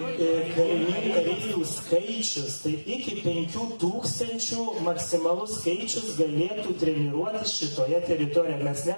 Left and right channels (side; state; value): both; inverted; correlation -1.00